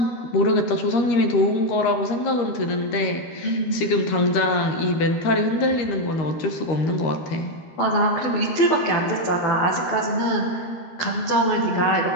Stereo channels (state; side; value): late; right; 13 ms